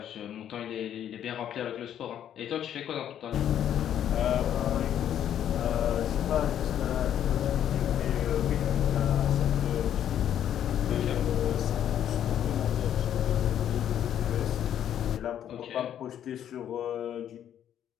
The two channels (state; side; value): quieter; right; 10.2 dB